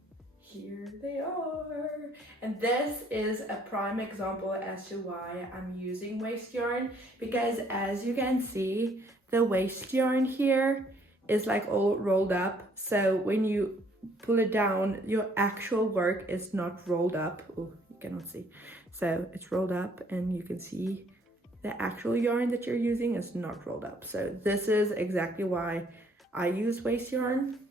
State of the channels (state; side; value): normal; both; correlation 0.63